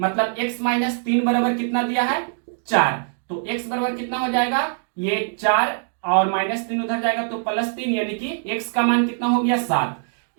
x - 3 बराबर कितना दिया है 4, तो x बराबर कितना हो जाएगा, ये 4 और -3 उधर जाएगा तो +3, यानी कि x का मान कितना हो गया 7,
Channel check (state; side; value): silent; left; digital silence